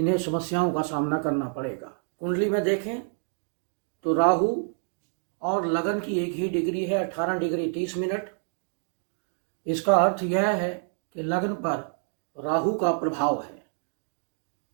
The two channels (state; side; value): silent; left; 60 dB below the other